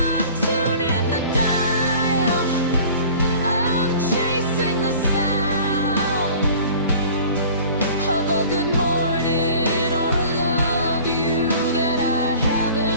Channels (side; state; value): both; inverted; correlation -0.45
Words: tuning the dial, I'm chasing the sound of a good morning or a love you that I